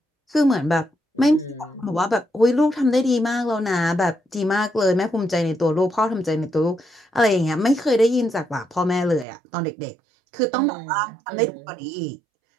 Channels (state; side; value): drops out; left; at 9.2 s